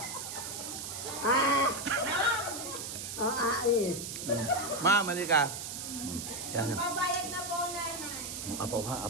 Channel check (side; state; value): right; noise; hiss, 6 dB below the sound